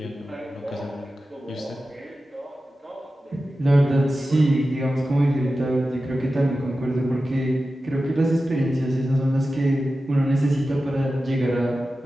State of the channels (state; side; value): normal; both; correlation 0.93